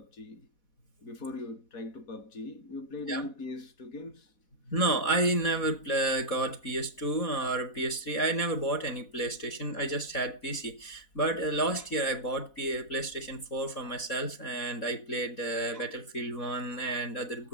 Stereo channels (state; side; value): late; right; 4.1 ms